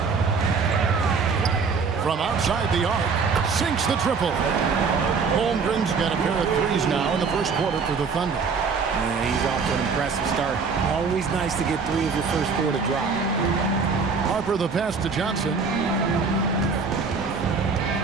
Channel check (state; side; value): quieter; left; 5.1 dB